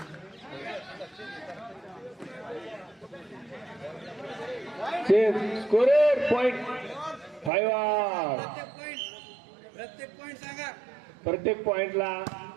Scorer point 5. प्रत्येक पॉइंटला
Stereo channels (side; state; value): left; drops out; at 7.5 s